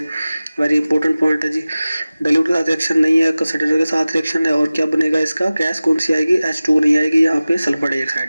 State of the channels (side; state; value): both; inverted; correlation -0.97